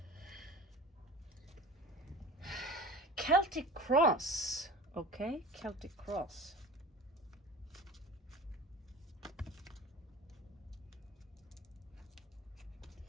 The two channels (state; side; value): normal; both; correlation 0.38